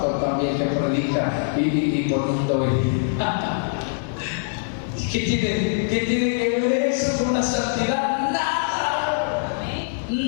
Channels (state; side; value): silent; right; digital silence